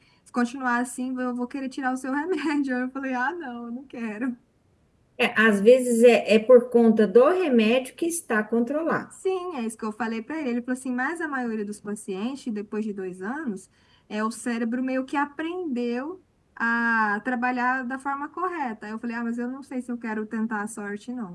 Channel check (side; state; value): both; identical; correlation 1.00